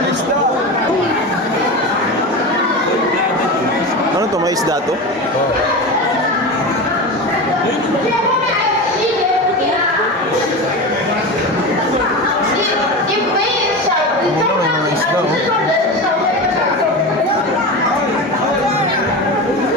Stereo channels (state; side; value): normal; both; correlation 0.25